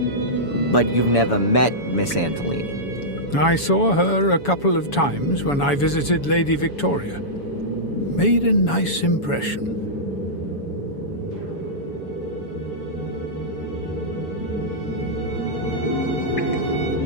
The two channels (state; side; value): late; right; 7.1 ms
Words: but you've never met Miss Antolini. I saw her a couple of times when I visited Lady Victoria. Made a nice impression.